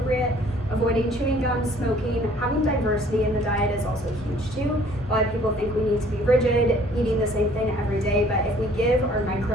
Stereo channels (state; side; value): normal; both; correlation 0.56